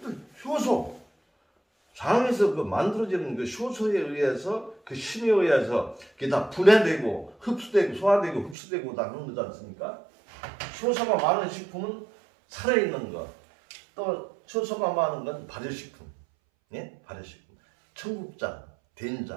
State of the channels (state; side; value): drops out; left; at 8.6 s